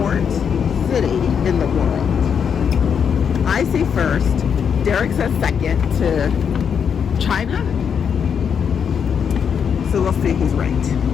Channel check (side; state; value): right; quieter; 7.2 dB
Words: city in the world. I say first. Derek says second to China. So we'll see who's right.